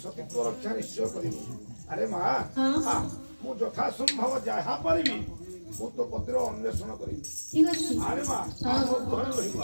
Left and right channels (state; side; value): inverted; both; correlation -1.00